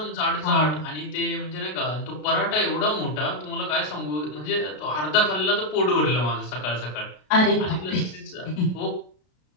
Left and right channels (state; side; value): late; right; 33 ms